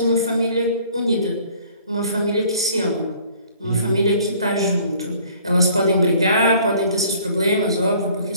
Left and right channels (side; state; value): both; inverted; correlation -0.55